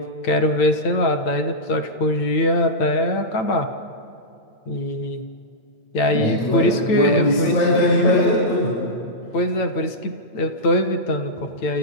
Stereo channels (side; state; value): right; late; 9.0 ms